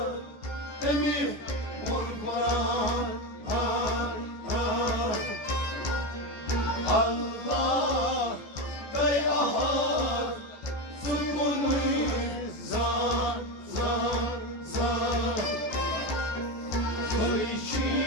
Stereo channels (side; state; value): right; late; 14 ms